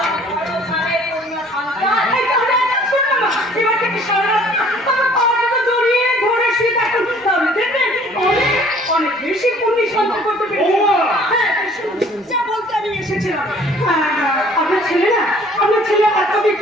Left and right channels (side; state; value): both; normal; correlation 0.55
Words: পূর্ণ সন্তান। এবার থেকে সারা তোমার পাওয়াটা জড়িয়ে ধরে শুয়ে থাকুন, তাহলে দেখবেন অনেক অনেক বেশি পুণ্য সঞ্চয় করতে পেরেছি। হ্যাঁ, যা বলতে আমি এসেছিলাম। আপনার ছেলে না, আপনার ছেলে এতদিন